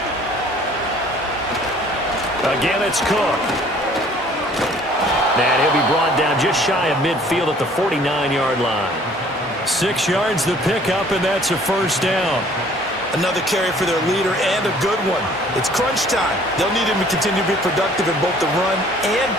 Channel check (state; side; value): normal; both; correlation 0.55